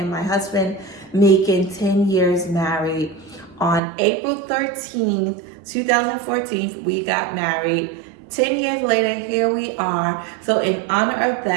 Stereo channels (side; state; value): left; drops out; at 3.8 s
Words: my husband making 10 years married. On April 13th, 2014, we got married. 10 years later, here we are. So in honor of